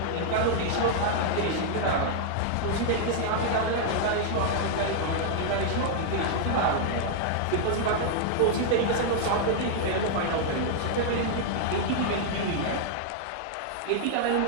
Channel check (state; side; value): different; both; correlation -0.01